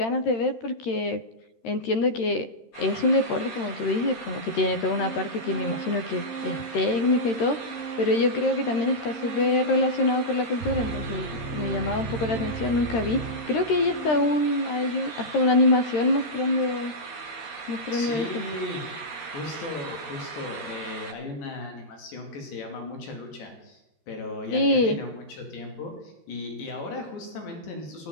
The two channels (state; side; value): late; right; 12 ms